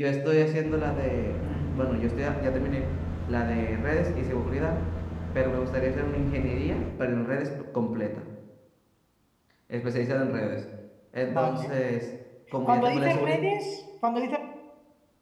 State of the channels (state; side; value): identical; both; correlation 1.00